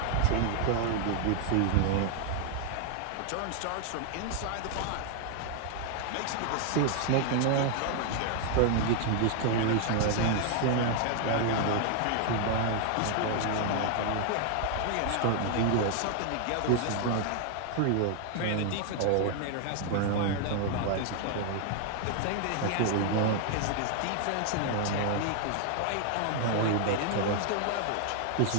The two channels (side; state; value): both; different; correlation 0.00